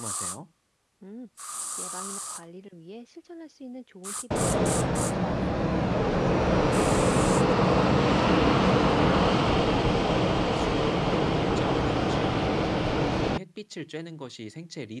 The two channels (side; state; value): both; identical; correlation 1.00